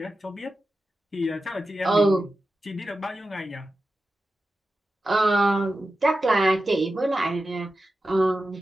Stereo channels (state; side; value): normal; both; correlation 0.92